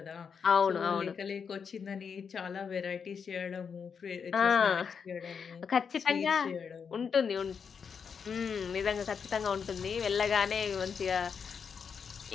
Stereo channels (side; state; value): right; quieter; 6.4 dB